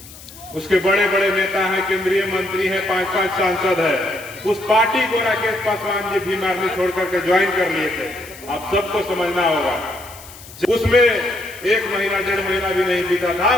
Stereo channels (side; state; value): left; noise; hiss, 18 dB below the sound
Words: उसके बड़े बड़े नेता हैं, केंद्रीय मंत्री हैं, 5-5 सांसद है। उस पार्टी को राकेश पासवान जी भीम आर्मी छोड़ करके ज्वाइन कर लिए थे। आप सबको समझना होगा। उसमें 1 महीना 1.5 महीना भी नहीं बीता था,